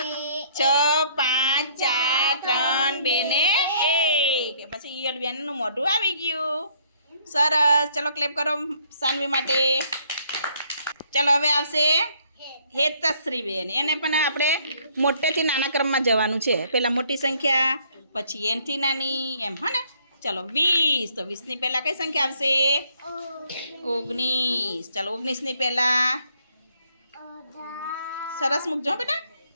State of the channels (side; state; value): both; inverted; correlation -0.64